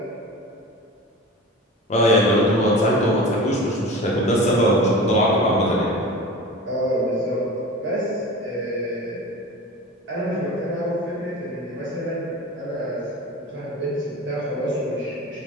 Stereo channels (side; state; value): both; normal; correlation 0.34